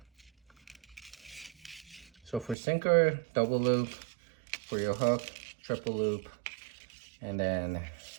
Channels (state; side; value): drops out; left; at 2.6 s